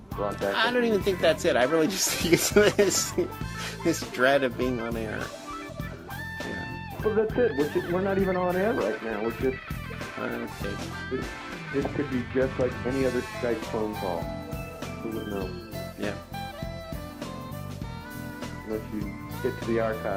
brought back. I don't even think that's it. I really just think it's this dread of being on air. Yeah. Well, that's it. We're not even on air right now. We're just... This could be just like any other Skype phone call. Who would know? Yeah. Unless you get to the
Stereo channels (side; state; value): both; identical; correlation 1.00